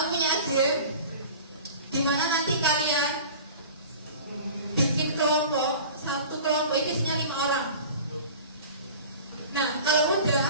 punya ide di mana nanti kalian bikin kelompok, satu kelompok itu isinya 5 orang. Nah, kalau udah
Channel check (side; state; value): both; inverted; correlation -0.40